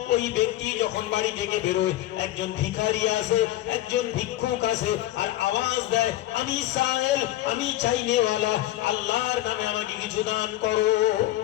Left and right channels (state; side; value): quieter; right; 15.2 dB